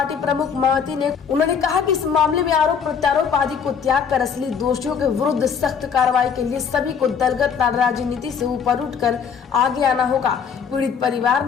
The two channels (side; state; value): right; quieter; 6.9 dB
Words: प्रमुख मायावती ने उन्होंने कहा कि इस मामले में आरोप प्रत्यारोप आदि को त्याग कर असली दोषियों के विरुद्ध सख्त कार्रवाई के लिए सभी को दलगत राजनीति से ऊपर उठकर आगे आना होगा। पीड़ित परिवार